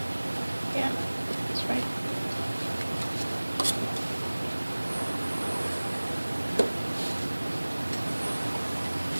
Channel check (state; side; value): inverted; both; correlation -1.00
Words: Yeah, that's right.